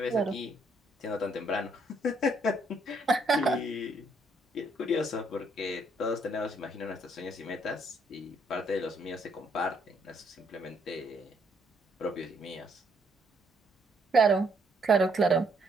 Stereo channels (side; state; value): both; normal; correlation 0.70